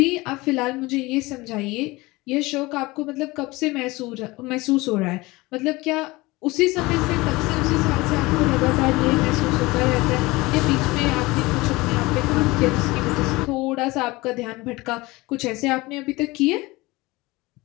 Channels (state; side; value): quieter; right; 21.7 dB